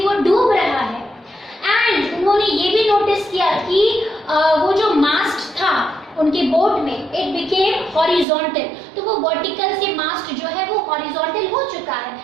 वो डूब रहा है। एंड उन्होंने ये भी नोटिस किया कि वो जो मास्ट था उनके बोट में, इट बिकेम हॉरिजॉन्टल, तो वो वर्टिकल से मास्ट जो है वो हॉरिजॉन्टल हो चुका है।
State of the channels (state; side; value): drops out; left; at 8.2 s